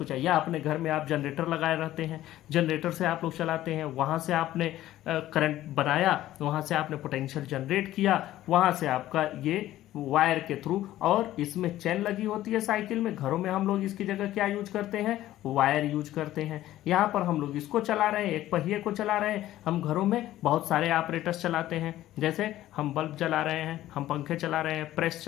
चाहिए। या अपने घर में आप जनरेटर लगाए रहते हैं, जनरेटर से आप लोग चलाते हैं, वहाँ से आपने करंट बनाया, वहाँ से आपने पोटेंशियल जनरेट किया, वहाँ से आपका ये वायर के थ्रू, और इसमें चेन लगी होती है साइकिल में। घरों में हम लोग इसकी जगह क्या यूज करते हैं, वायर यूज करते हैं। यहाँ पर हम लोग इसको चला रहे हैं, एक पहिए को चला रहे हैं। हम घरों में बहुत सारे ऑपरेटर्स चलाते हैं, जैसे हम बल्ब चला रहे हैं, हम पंखे चला रहे हैं, प्रेस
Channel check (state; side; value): quieter; right; 14.2 dB